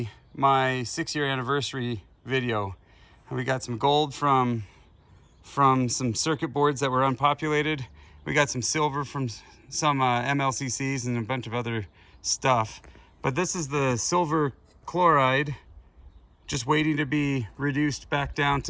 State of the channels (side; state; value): both; identical; correlation 1.00